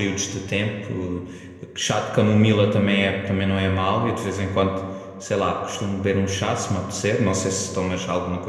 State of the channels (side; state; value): both; identical; correlation 1.00